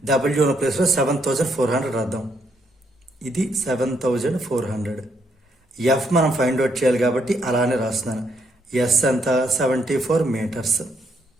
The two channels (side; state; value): both; normal; correlation 0.74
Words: డబ్ల్యూ ఉన్న ప్లేస్లో 7400 రాద్దాం. ఇది 7400. ఎఫ్ మనం ఫైండ్ అవుట్ చేయాలి కాబట్టి అలానే రాస్తున్నాను. ఎస్ అంతా 74 మీటర్స్.